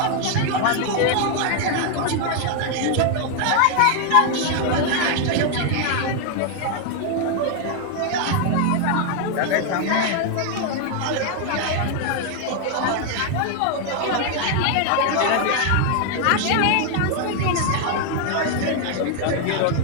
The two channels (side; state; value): both; different; correlation 0.00